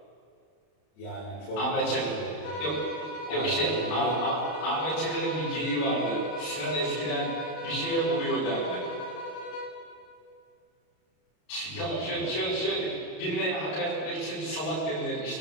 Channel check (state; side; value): late; right; 32 ms